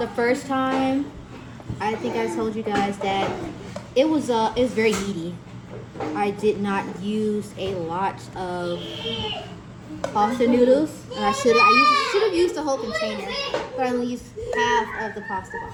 first time, I think I told you guys that it was very meaty. I did not use a lot of pasta noodles, and I should have used the whole container, but I only used half of the pasta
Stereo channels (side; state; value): both; identical; correlation 1.00